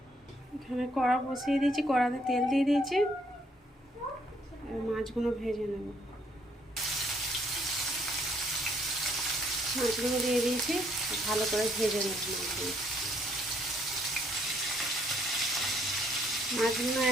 এখানে কড়া বসিয়ে দিয়েছি, কড়াতে তেল দিয়ে দিয়েছি। মাছগুলো ভেজে নেব। মাছগুলো দিয়ে দিয়েছি, ভালো করে ভেজে নেব মাছগুলো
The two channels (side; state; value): both; normal; correlation 0.68